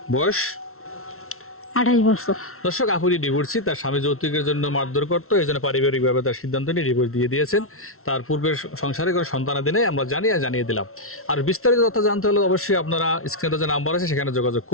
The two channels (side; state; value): right; late; 0.62 ms